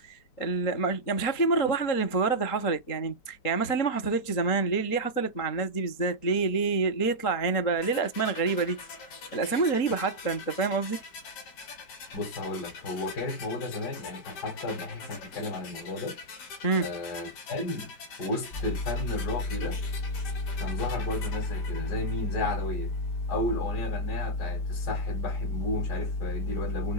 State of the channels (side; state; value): right; late; 3.8 ms